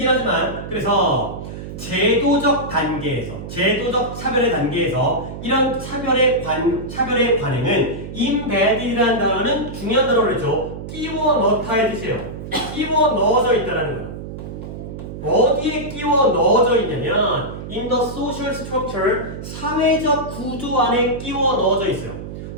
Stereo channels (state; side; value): noise; right; hum, 10 dB below the sound